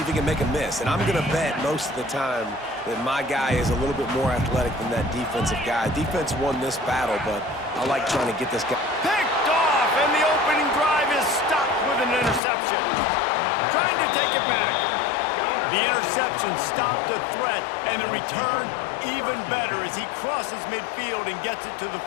if he can make a miss. And I'm going to bet most of the time that my guy is a little bit more athletic than that defensive guy. Defense won this battle, but I like trying to get this guy. Picked off, and the opening drive is stopped with an interception. Trying to take it back. The interception stopped the threat, and the return even better as he crosses midfield and gets it to the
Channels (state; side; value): drops out; right; at 12.4 s